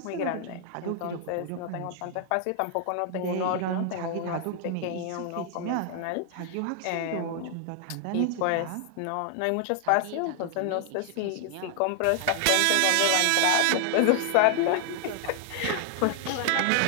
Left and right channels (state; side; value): different; both; correlation 0.00